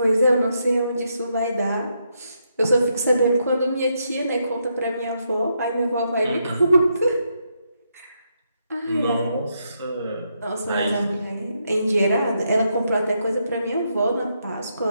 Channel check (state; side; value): inverted; both; correlation -0.79